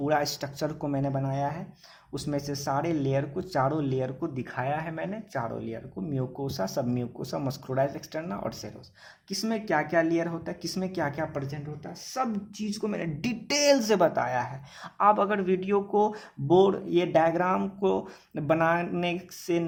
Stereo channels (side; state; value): both; identical; correlation 1.00